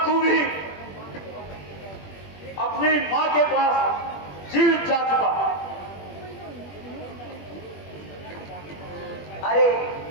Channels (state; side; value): late; right; 21 ms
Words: तू भी अपनी माँ के पास जीवित जा चुका। अरे